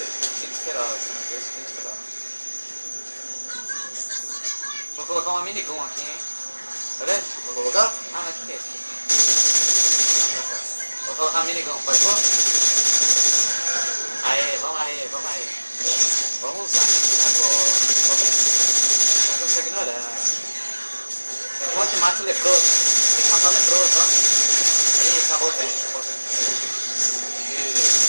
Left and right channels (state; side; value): inverted; both; correlation -1.00